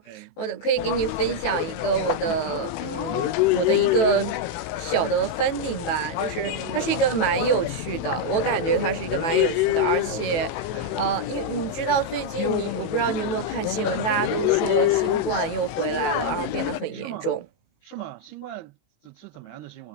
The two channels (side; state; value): right; late; 18 ms